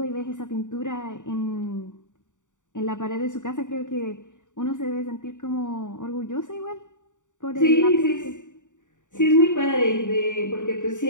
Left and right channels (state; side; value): late; right; 0.86 ms